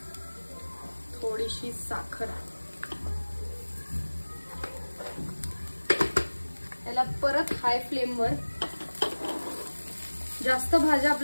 थोडीशी साखर. याला परत हाय फ्लेमवर. जास्त भाज्या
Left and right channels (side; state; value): both; inverted; correlation -1.00